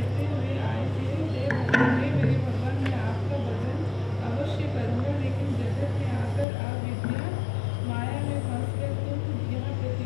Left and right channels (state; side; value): drops out; right; at 6.5 s